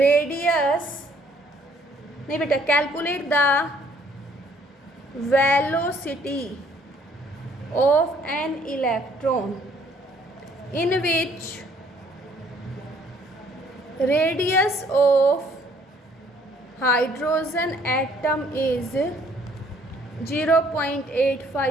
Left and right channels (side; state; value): both; normal; correlation 0.62